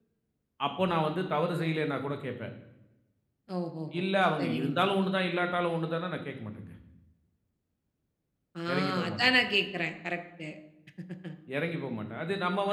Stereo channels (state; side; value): identical; both; correlation 1.00